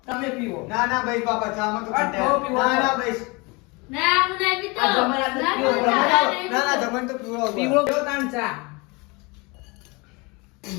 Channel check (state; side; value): quieter; right; 27.3 dB